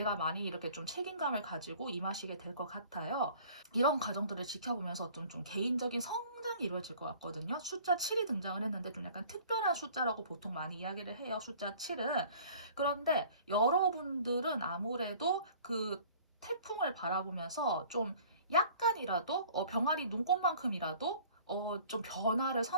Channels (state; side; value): inverted; both; correlation -0.49